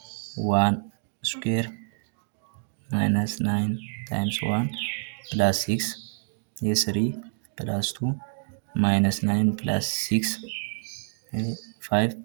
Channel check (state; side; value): silent; left; digital silence